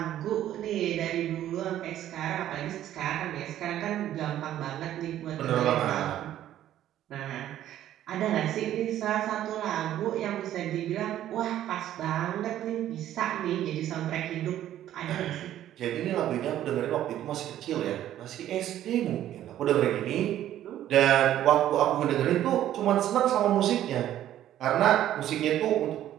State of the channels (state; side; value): quieter; left; 12.2 dB